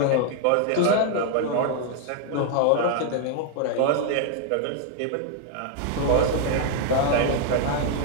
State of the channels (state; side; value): different; both; correlation 0.00